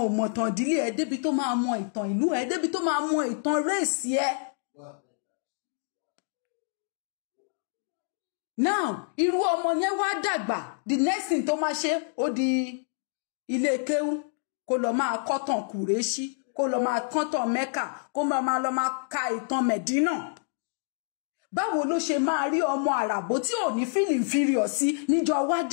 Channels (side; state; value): right; silent; digital silence